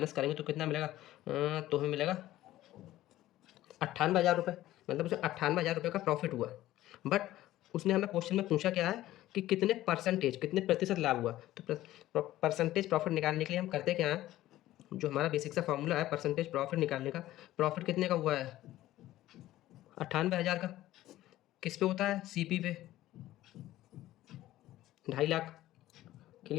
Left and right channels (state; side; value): quieter; right; 15.0 dB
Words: करेंगे तो कितना मिलेगा? तो हमें मिलेगा 98,000 रुपये, मतलब उसे 98,000 रुपये का प्रॉफिट हुआ। बट उसने हमें क्वेश्चन में पूछा क्या है कि कितने परसेंटेज, कितने प्रतिशत लाभ हुआ। तो परसेंटेज प्रॉफिट निकालने के लिए हम करते क्या हैं, जो हमारा बेसिक सा फॉर्मूला है परसेंटेज प्रॉफिट निकालने का, प्रॉफिट कितने का हुआ है? 98,000 का। किस पे होता है? सीपी पे 2.5 लाख।